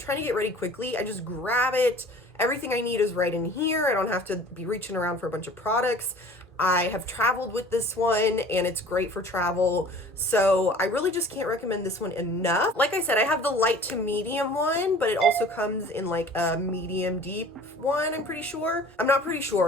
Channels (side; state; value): both; normal; correlation 0.46